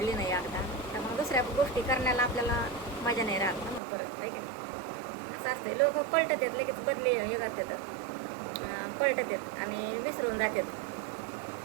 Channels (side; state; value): left; drops out; at 3.8 s